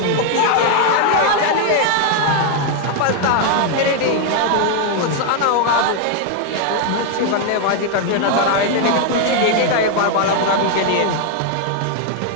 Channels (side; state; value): both; different; correlation 0.00